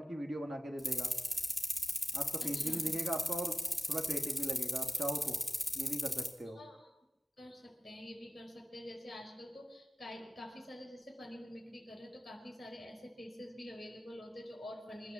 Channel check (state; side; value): normal; both; correlation 0.93